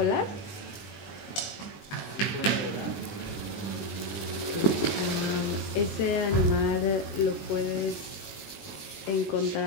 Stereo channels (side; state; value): right; late; 20 ms